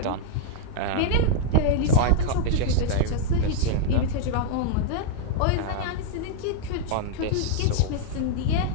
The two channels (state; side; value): different; both; correlation -0.01